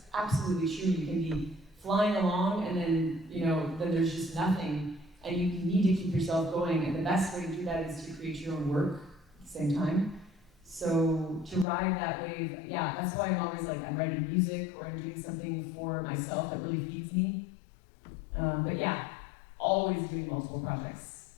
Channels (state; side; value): drops out; right; at 11.7 s